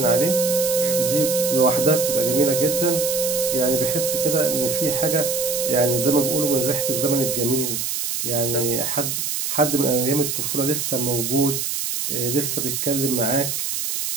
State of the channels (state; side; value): noise; right; hiss, 2 dB below the sound